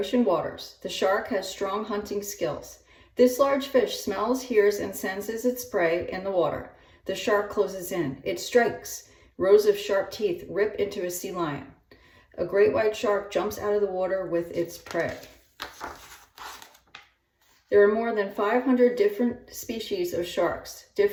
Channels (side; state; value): both; identical; correlation 1.00